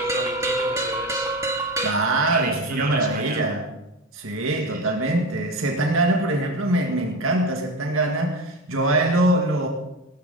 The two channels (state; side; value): normal; both; correlation 0.22